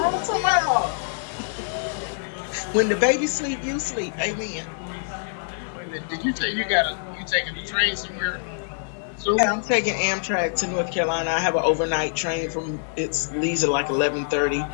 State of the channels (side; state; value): right; silent; digital silence